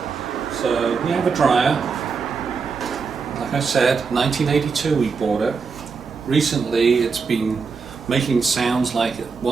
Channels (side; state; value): left; quieter; 5.2 dB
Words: So we have a dryer. Like I said, 1982 we bought it. Recently it's been making sounds like it